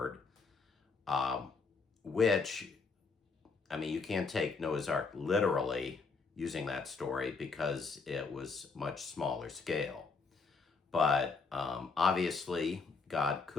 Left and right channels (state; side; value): quieter; right; 4.5 dB